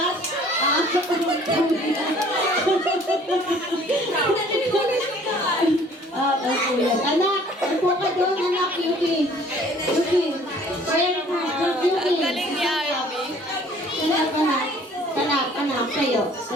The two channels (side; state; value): both; normal; correlation 0.54